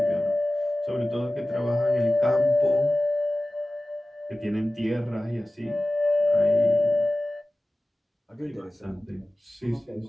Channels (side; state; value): both; normal; correlation 0.96